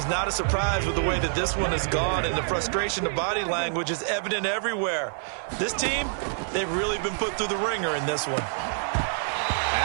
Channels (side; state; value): left; silent; 60 dB below the other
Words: not a surprise with the way that this one has gone, and the frustration of body language is evident everywhere. This team, they've really been put through the ringer in this one.